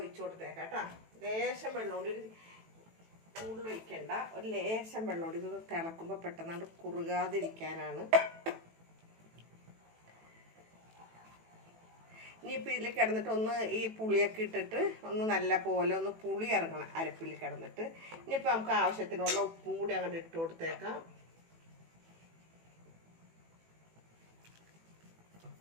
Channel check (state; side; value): late; left; 18 ms